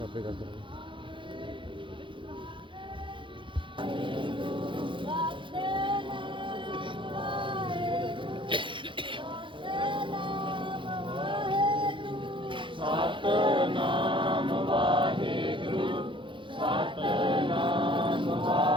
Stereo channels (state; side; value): late; left; 0.24 ms